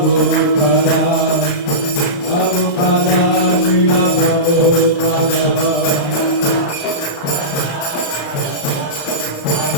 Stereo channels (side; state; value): right; late; 35 ms